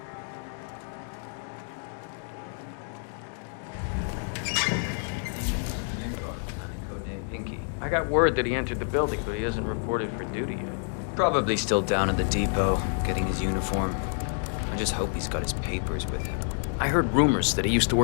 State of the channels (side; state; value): right; silent; 59 dB below the other